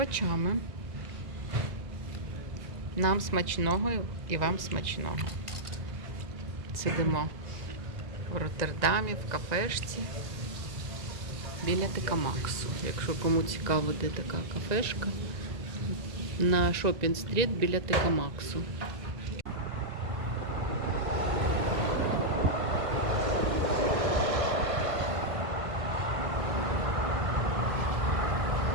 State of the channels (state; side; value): late; left; 1.9 ms